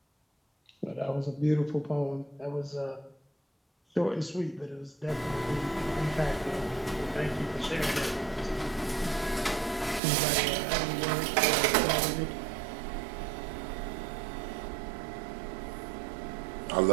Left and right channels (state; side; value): drops out; left; at 10.0 s